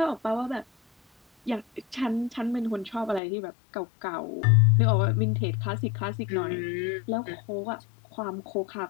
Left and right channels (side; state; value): right; drops out; at 3.2 s